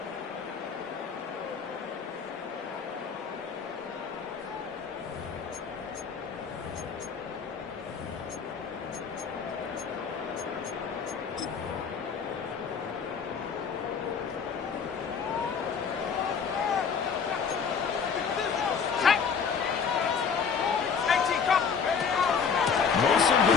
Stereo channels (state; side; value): quieter; right; 6.2 dB